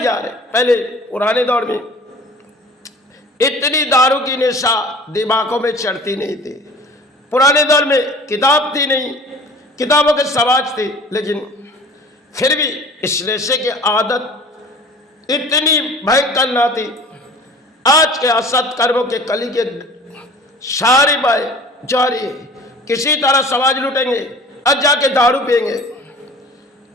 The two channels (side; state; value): both; normal; correlation 0.44